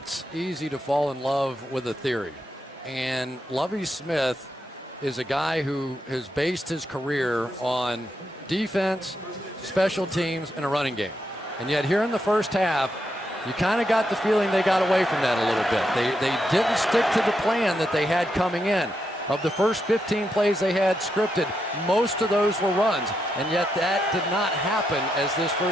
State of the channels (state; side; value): normal; both; correlation 0.82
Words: easy to fall in love with a theory. And Lovie Smith is a guy who has based his career on defense, special teams, and a running game. And yet here in the first half, you kind of got the feeling they got away from that a little bit. They didn't stick to the plan that they had coming in. Of the first 15 plays they had scripted, most of those were runs, and yet that did not happen as this